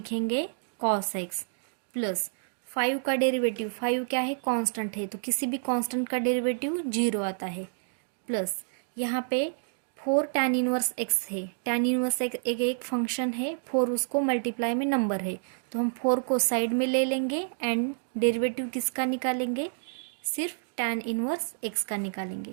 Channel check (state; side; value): silent; left; digital silence